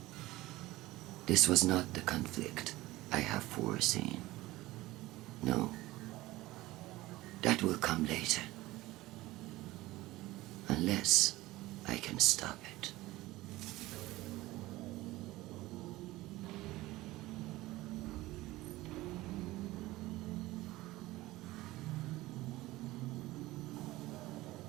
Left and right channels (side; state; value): left; quieter; 18.3 dB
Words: this was not the conflict I have foreseen. No. That will come later. Unless I can stop it.